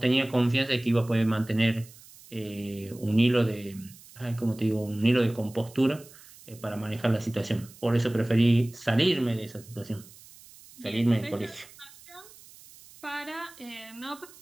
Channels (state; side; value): noise; right; hiss, 22 dB below the sound